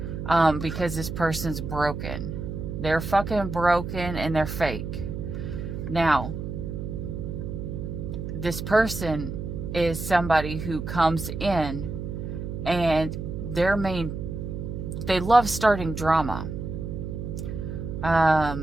Because this person's broken. They're fucking broken and they're fake. Now, this person is somebody who comes in and they love starting drama.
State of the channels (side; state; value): right; noise; hum, 6 dB below the sound